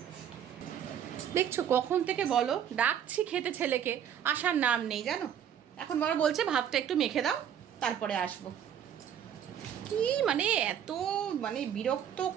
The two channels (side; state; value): left; quieter; 9.2 dB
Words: দেখছো কখন থেকে বলো ডাকছি খেতে ছেলেকে, আসার নাম নেই জানো। এখন বাবা বলছে ভাতটা একটু মেখে দাও তারপরে আসবো। কি মানে এত মানে বিরক্ত